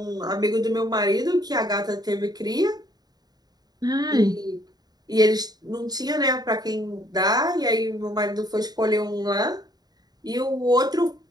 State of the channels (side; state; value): left; late; 0.19 ms